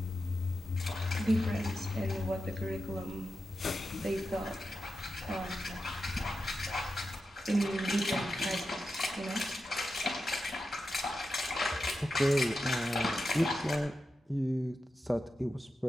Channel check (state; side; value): normal; both; correlation 0.90